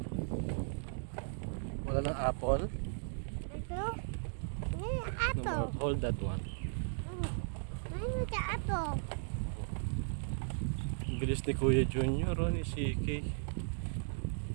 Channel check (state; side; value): silent; left; digital silence